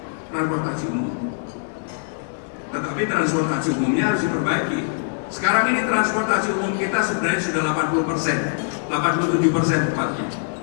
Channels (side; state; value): right; silent; 64 dB below the other